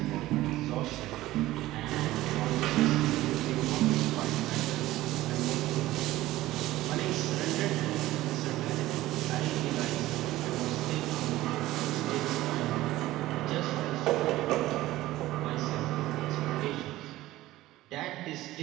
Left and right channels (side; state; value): left; quieter; 16.5 dB